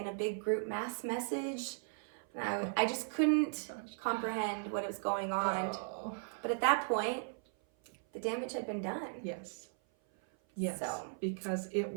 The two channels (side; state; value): left; silent; 53 dB below the other